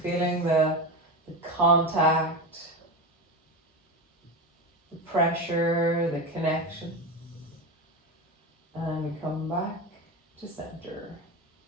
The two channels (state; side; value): normal; both; correlation 0.20